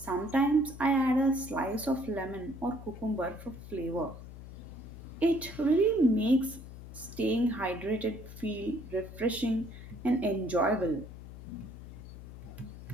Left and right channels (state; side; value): noise; left; hum, 13 dB below the sound